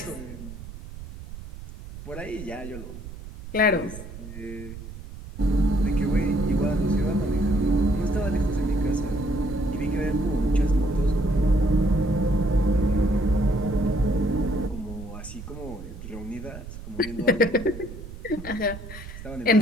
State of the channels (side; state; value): right; noise; rumble, 12 dB below the sound